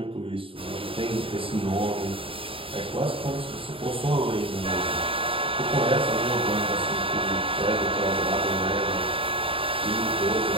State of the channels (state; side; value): late; left; 0.26 ms